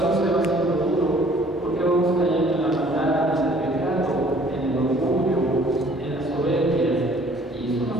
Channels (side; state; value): both; normal; correlation 0.56